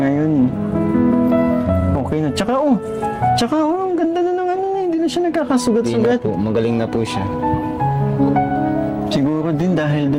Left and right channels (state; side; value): identical; both; correlation 1.00